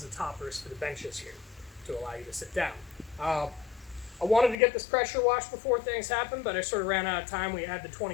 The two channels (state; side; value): drops out; right; at 4.5 s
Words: the toppers for the benches here to allow you to sit down. I wanted to get this pressure washed before things happened, but I sort of ran out of time. We had the